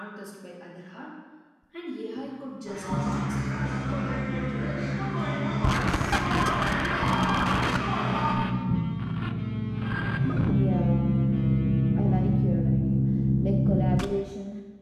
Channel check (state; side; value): identical; both; correlation 1.00